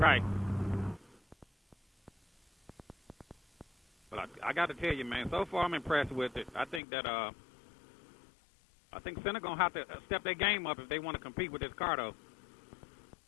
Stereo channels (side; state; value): right; drops out; at 6.8 s